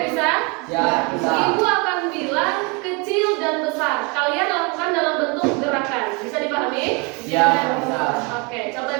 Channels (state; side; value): quieter; left; 30.7 dB